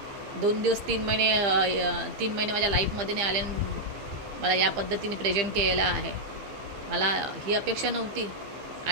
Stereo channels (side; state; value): left; late; 15 ms